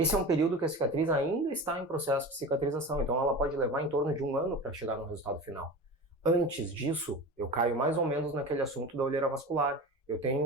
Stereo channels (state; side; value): normal; both; correlation 0.31